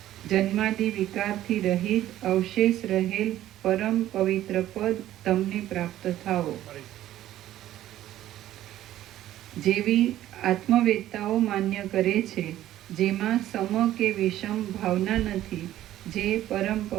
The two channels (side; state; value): left; quieter; 13.3 dB